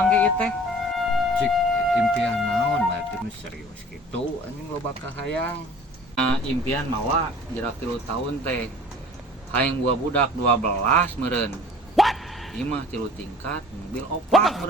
ge ieu teh. Cik impian naon berarti nu serius gitu anjing loba kahayang. Impian mah jerak 3 tahun teh. Hayang boga budak 12 meureun. Ieu mah 3 tingkat, mobil 4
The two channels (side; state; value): both; normal; correlation 0.47